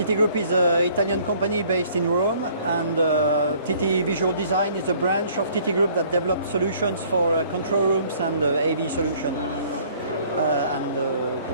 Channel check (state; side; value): inverted; both; correlation -0.57